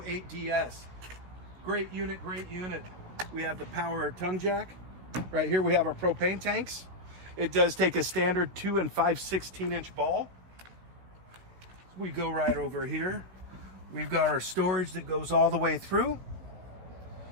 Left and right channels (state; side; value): late; left; 17 ms